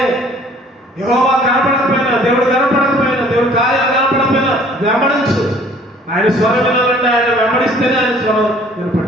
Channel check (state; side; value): normal; both; correlation 0.55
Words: యెహోవా కనపడకపోయినా, దేవుడు కనపడకపోయినా, దేవుడు కార్యాలు కనపడకపోయినా వెంబడించు. ఆయన స్వరం వినాలంటే ఆయన వెంబడిస్తేనే ఆయన స్వరం వినపడు.